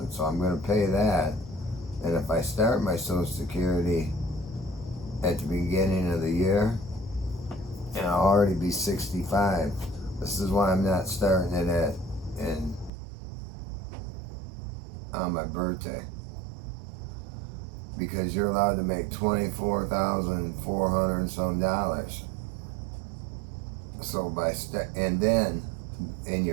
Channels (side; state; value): left; drops out; at 12.9 s